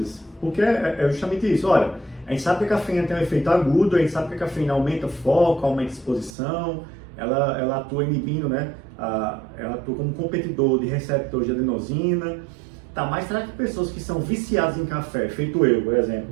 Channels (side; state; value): left; drops out; at 6.4 s